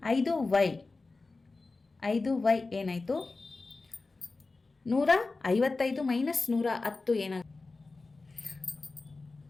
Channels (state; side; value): quieter; right; 3.6 dB